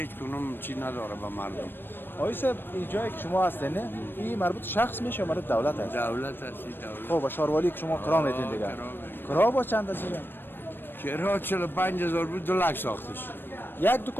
کنم چی نداره با مردم. آقای صاحب این جایی که شما هستین نه این مربوط شخص میشه یا مربوط دولت هست؟ دولت هستی دولت. خب با شاروالی که شما کرا میتین دیگه. کرا با چند هست دیگه؟ کرا 45,000 بود 2 لک ساختش. یک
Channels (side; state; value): right; late; 0.097 ms